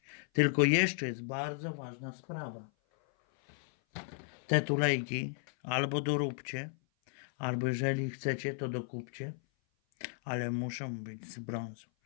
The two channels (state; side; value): silent; right; 55 dB below the other